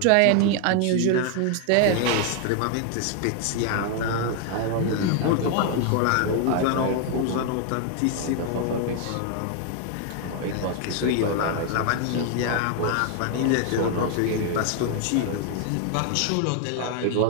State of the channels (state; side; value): different; both; correlation 0.00